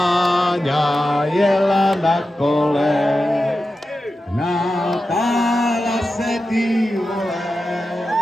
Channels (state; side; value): normal; both; correlation 0.92